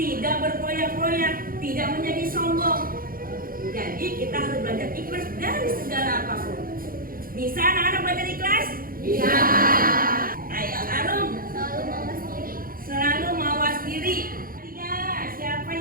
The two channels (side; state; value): left; late; 0.42 ms